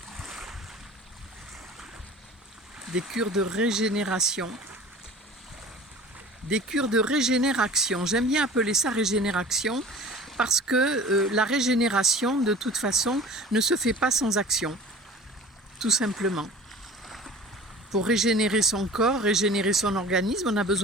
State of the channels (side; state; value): both; normal; correlation 0.42